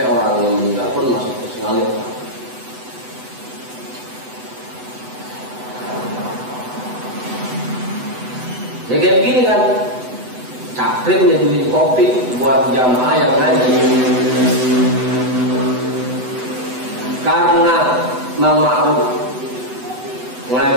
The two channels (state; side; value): late; left; 8.0 ms